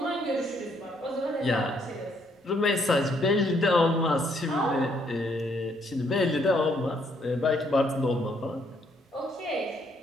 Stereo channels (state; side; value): normal; both; correlation 0.70